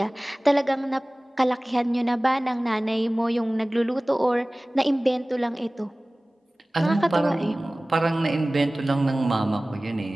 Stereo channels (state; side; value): normal; both; correlation 0.98